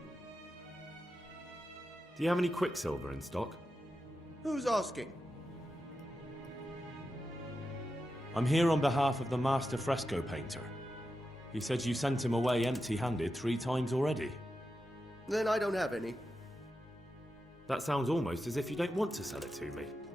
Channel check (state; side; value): normal; both; correlation 0.89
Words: Do you have any quicksilver in stock? Who's asking? I'm here on behalf of the master fresco painter. He said you sent him away empty-handed 3 times already. Then I don't have any. That sounds almost as if you don't want to sell it to me.